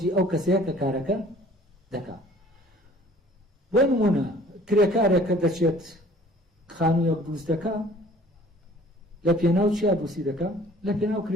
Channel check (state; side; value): normal; both; correlation 0.52